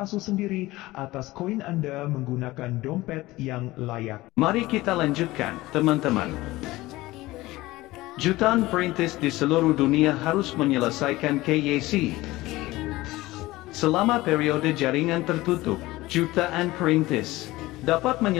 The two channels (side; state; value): right; quieter; 18.8 dB